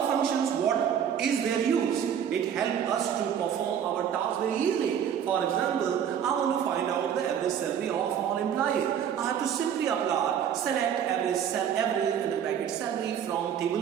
functions, what is their use? It helps us to perform our task very easily. For example, I want to find out the average salary of all employees. I have to simply apply select average in the bracket salary from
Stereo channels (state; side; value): quieter; left; 8.8 dB